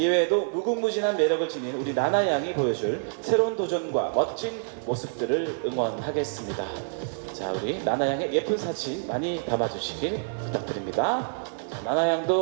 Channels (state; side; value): silent; left; digital silence